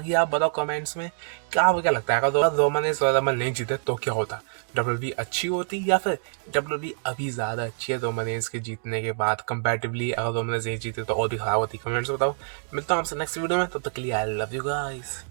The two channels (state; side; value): silent; left; digital silence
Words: आप बताओ कमेंट्स में आपको क्या लगता है, अगर रोमन रेंस रॉयल रंबल नहीं जीते तो क्या होता? डब्ल्यूडब्ल्यूई अच्छी होती, या फिर डब्ल्यूडब्ल्यूई अभी ज्यादा अच्छी है रोमन रेंस के जीतने के बाद कंपैरेटिवली? अगर रोमन रेंस नहीं जीते तो और भी खराब होती। कमेंट्स में बताओ। मिलता हूँ आपसे नेक्स्ट वीडियो में, तब तक के लिए आई लव यू गाइस।